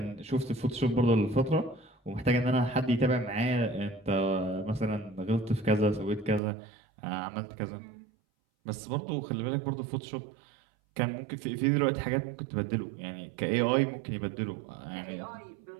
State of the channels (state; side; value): drops out; left; at 6.4 s